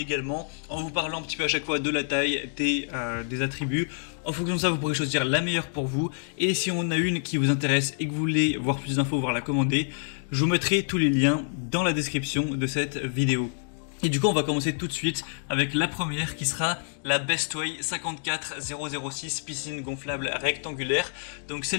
en vous parlant un petit peu à chaque fois de la taille, des attributs. En fonction de ça, vous pourrez choisir la meilleure pour vous. Et si on a une qui vous intéresse et que vous voulez voir plus d'infos, voire la commander, je vous mettrai tous les liens dans la description de cette vidéo. Et du coup, on va commencer tout de suite avec la première qui sera la Bestway 54006 piscine gonflable rectangulaire. Donc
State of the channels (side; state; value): right; silent; digital silence